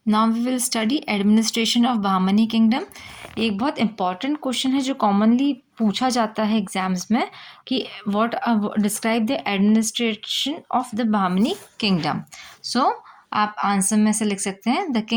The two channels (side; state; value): both; identical; correlation 1.00